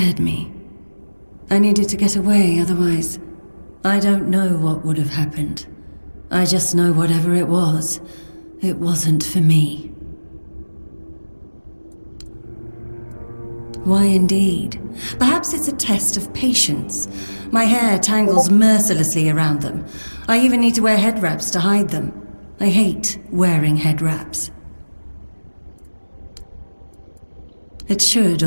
me. I needed to get away, otherwise, I don't know what would have happened. I just know whatever it wasn't for me. Why indeed? Perhaps it's a test of patience. My hair tangles mercilessly around them. I even need to wear head wraps to hide them. I hate wearing head wraps. It should,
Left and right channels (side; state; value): both; inverted; correlation -1.00